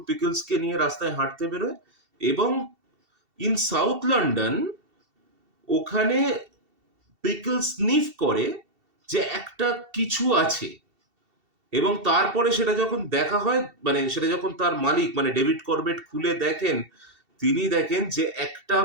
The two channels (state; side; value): late; left; 2.7 ms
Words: পিকলসকে নিয়ে রাস্তায় হাঁটতে বেরোয়, এবং ইন সাউথ লন্ডন ওখানে পিকলস স্নিফ করে যে একটা কিছু আছে, এবং তারপরে সেটা যখন দেখা হয়, মানে সেটা যখন তার মালিক মানে ডেভিড করবেট খুলে দেখেন, তিনি দেখেন যে একটা